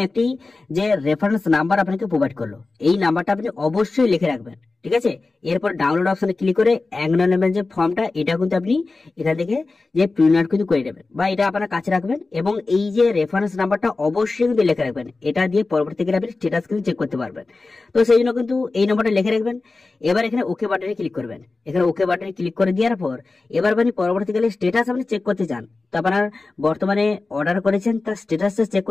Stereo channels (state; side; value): quieter; right; 3.6 dB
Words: একটি যে রেফারেন্স নাম্বার আপনাকে প্রোভাইড করলো এই নাম্বারটা আপনি অবশ্যই লিখে রাখবেন। ঠিক আছে, এরপর ডাউনলোড অপশনে ক্লিক করে অ্যাকনলেজমেন্ট যে ফর্মটা এটা কিন্তু আপনি এখান থেকে যে প্রিন্ট আউট কিন্তু করে নেবেন বা এটা আপনার কাছে রাখবেন এবং এই যে রেফারেন্স নাম্বারটা অবশ্যই কিন্তু লিখে রাখবেন। এটা দিয়ে পরবর্তীকালে আপনি স্ট্যাটাস কিন্তু চেক করতে পারবেন। তো সেই জন্য কিন্তু এই নম্বরটা লিখে রাখবেন। এবার এখানে ওকে বাটনে ক্লিক করবেন। এখানে ওকে বাটনে ক্লিক করে দেওয়ার পর এবার আপনি পরবর্তীকালে স্ট্যাটাস আপনি চেক করতে চান তো আপনার বর্তমানে অর্ডার করেছেন তার স্ট্যাটাসটা চেক